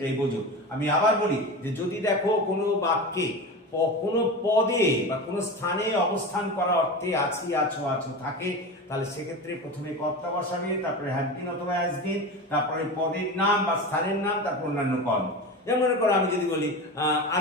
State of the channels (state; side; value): normal; both; correlation 0.27